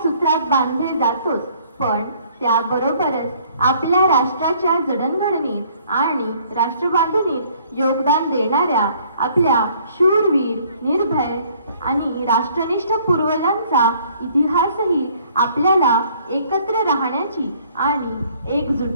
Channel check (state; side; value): inverted; both; correlation -0.59